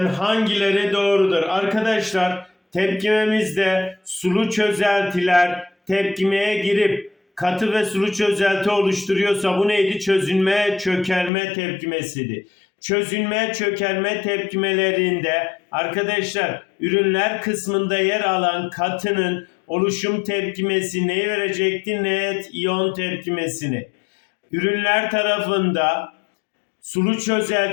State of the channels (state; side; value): drops out; right; at 11.3 s